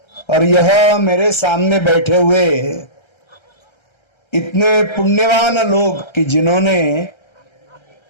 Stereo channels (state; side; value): late; right; 1.3 ms